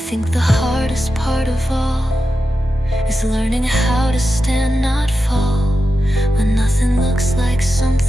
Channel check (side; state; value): both; normal; correlation 0.90